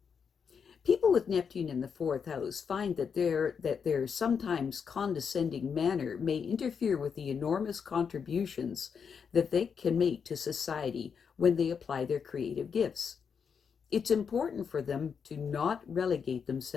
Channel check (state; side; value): quieter; right; 6.5 dB